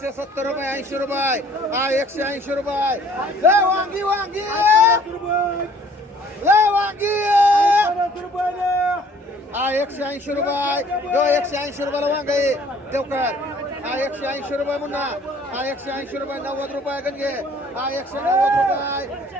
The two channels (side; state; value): both; normal; correlation 0.56